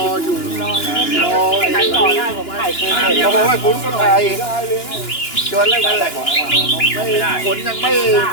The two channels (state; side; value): late; right; 2.9 ms